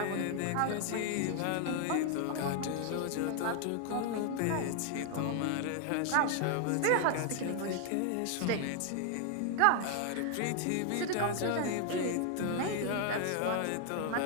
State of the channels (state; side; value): different; both; correlation 0.00